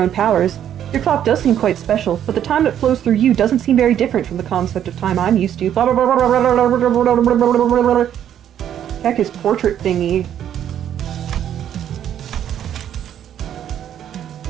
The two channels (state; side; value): quieter; left; 10.1 dB